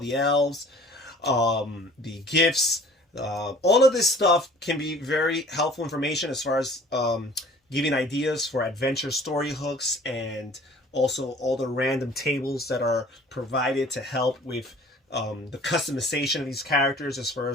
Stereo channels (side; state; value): both; normal; correlation 0.49